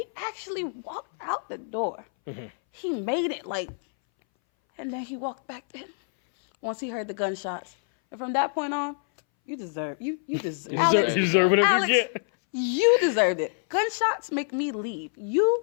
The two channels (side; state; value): right; silent; 60 dB below the other